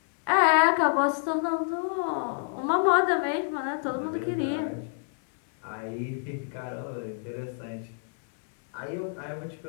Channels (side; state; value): right; silent; digital silence